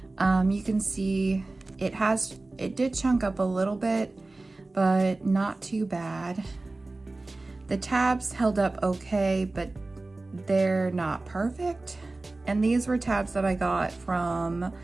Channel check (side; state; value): left; quieter; 3.1 dB